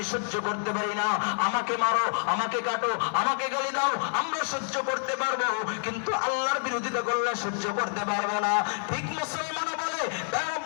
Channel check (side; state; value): right; silent; 59 dB below the other